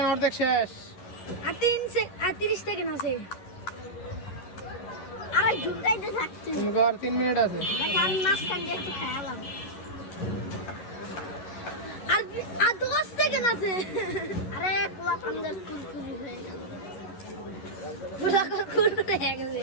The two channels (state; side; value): late; right; 11 ms